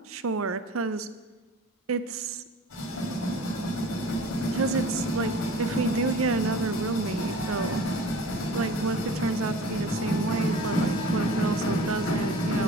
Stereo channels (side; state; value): both; normal; correlation 0.43